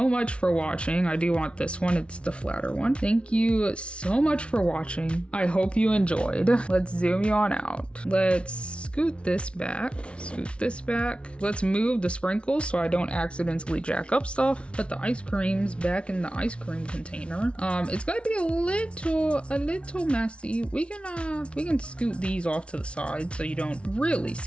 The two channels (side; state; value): right; late; 0.059 ms